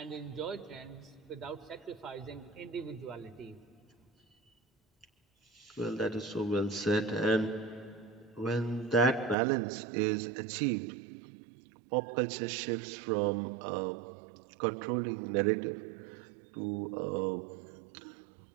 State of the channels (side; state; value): left; drops out; at 9.3 s